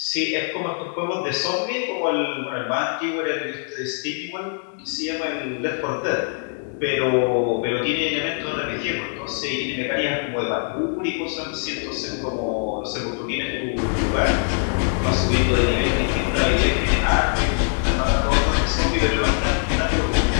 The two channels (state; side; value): silent; right; 64 dB below the other